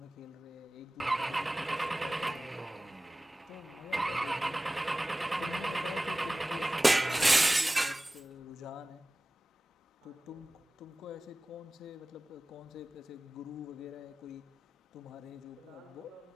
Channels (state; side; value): normal; both; correlation 0.97